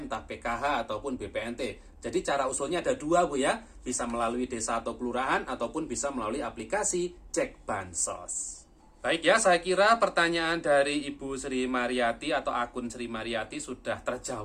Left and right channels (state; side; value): identical; both; correlation 1.00